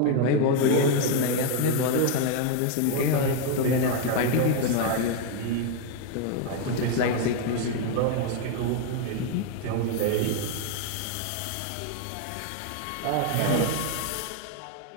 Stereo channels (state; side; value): different; both; correlation 0.01